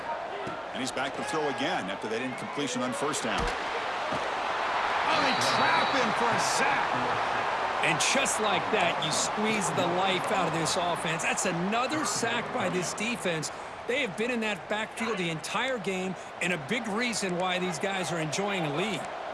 And he's back to throw again after that incompletion on 1st down. Oh, they trap him for a sack. And just like that, you squeeze the life out of this offense. That's another sack by this defense. They have been in that backfield the entire game, and a big reason why these guys are enjoying a lead.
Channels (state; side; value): identical; both; correlation 1.00